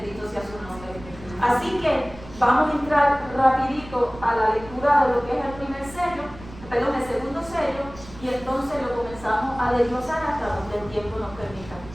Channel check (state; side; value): noise; right; rumble, 17 dB below the sound